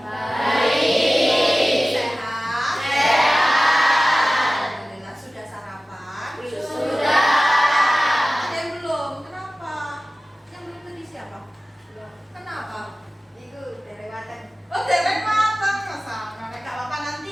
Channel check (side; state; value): both; normal; correlation 0.96